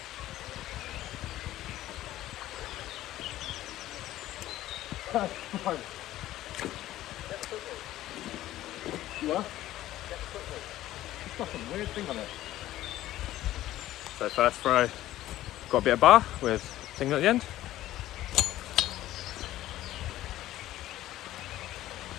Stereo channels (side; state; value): right; quieter; 14.5 dB